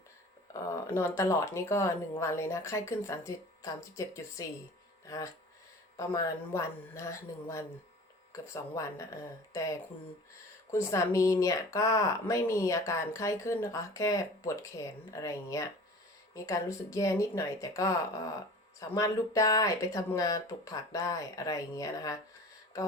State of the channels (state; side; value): normal; both; correlation 0.42